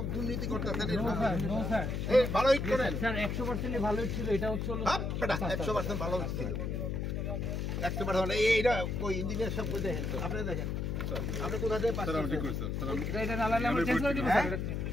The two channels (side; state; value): left; noise; hum, 1 dB below the sound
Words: দুর্নীতি করতেছেন? এই ভালো ইট করেন স্যার, 100% ভালো ইট ছিল। এটা হচ্ছে 100% ভালো ইট ছিল। 100% ভালো। এইটা ওই ইঞ্জিনিয়ার সব দেখেন, আপনি দেখেন আপনি কোথা থেকে পাস করছেন? এটা না লাগলে আমরা চেঞ্জ করে দিব স্যার।